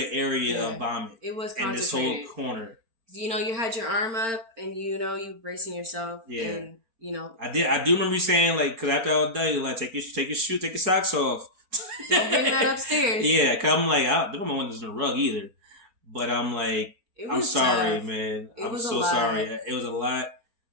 area of vomit. It was concentrated. In this whole corner. You had your arm up, and you bracing yourself. Yeah. And I do remember you saying because after all day, take your socks off. Don't bring that upstairs. Yeah, cause I'm I don't know when there's a rug either, but I'm I'm sorry, tough. Man. I'm so sorry. It was a lot.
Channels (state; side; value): late; left; 4.4 ms